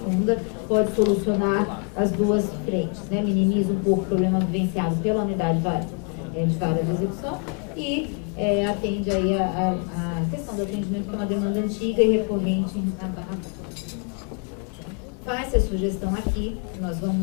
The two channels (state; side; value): quieter; right; 37.9 dB